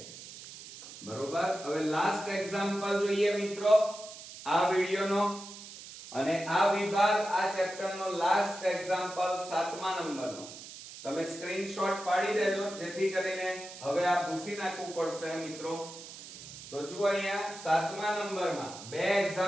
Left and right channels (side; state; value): right; noise; hiss, 14 dB below the sound